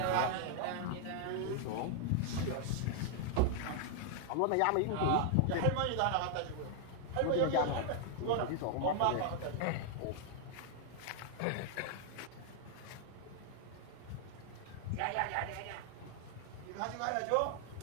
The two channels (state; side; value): different; both; correlation 0.00